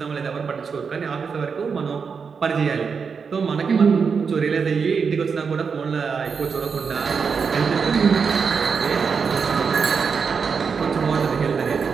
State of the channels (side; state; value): left; quieter; 5.8 dB